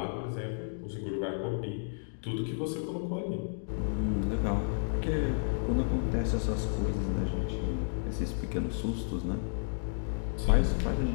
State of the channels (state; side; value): silent; right; digital silence